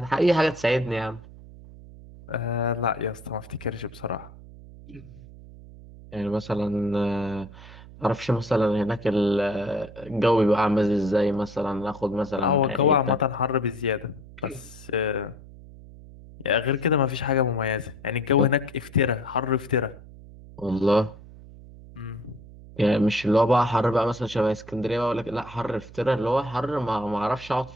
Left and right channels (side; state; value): right; noise; hum, 18 dB below the sound